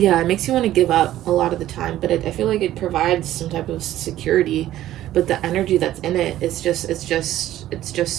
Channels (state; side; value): quieter; left; 13.6 dB